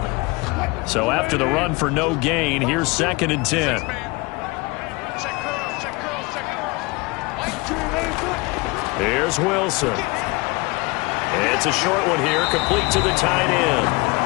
So after the run for no gain, here's 2nd and 10. Here's Wilson. It's a short one here, complete to the tight end.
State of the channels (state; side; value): quieter; right; 25.0 dB